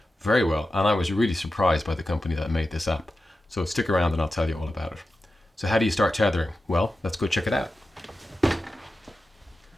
very well, and I was really surprised by the company that made this app. So stick around and I'll tell you all about it. So how do you start tethering? Well, let's go check it out.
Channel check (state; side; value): normal; both; correlation 0.92